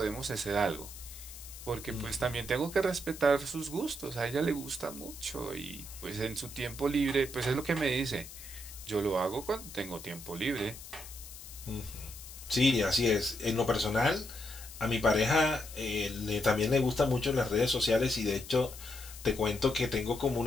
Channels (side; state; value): left; noise; hiss, 14 dB below the sound